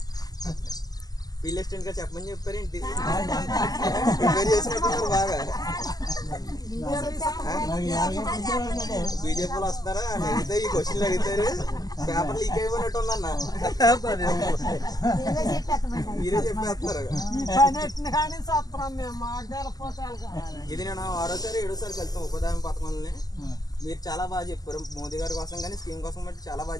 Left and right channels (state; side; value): late; right; 0.18 ms